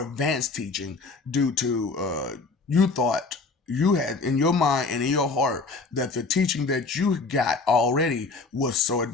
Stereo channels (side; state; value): right; quieter; 4.0 dB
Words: advanced teaching due to you thought you had in your mind and in your heart that the teaching that you got already was so